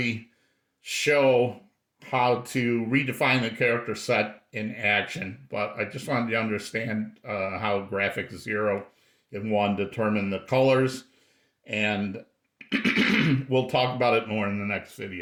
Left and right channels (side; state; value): both; identical; correlation 1.00